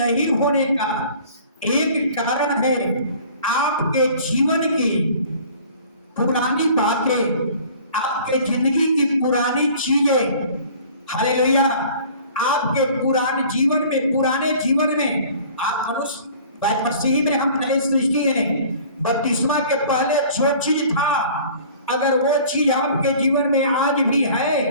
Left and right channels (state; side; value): inverted; both; correlation -0.48